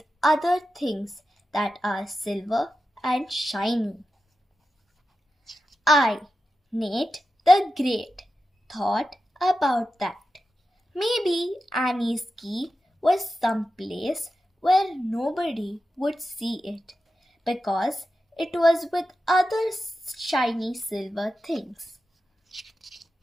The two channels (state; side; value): normal; both; correlation 0.91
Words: other things that are silver and shiny. I, Nate the Great, thought about that. Maybe Annie's key was someplace where nobody would see it because it was with other shiny silver things.